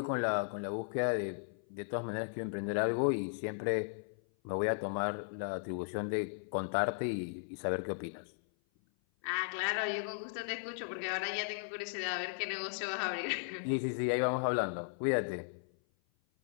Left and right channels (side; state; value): right; silent; 54 dB below the other